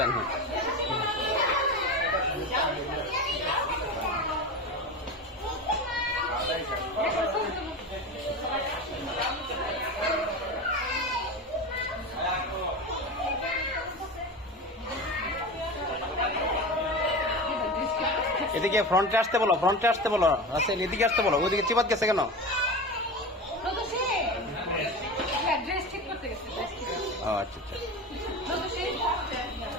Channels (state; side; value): normal; both; correlation 0.27